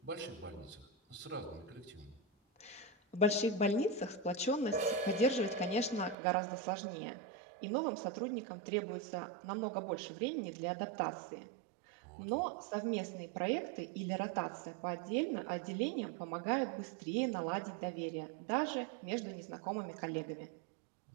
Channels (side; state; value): left; drops out; at 6.2 s